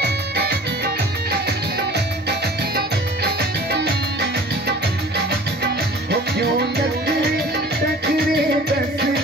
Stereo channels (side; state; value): both; normal; correlation 0.45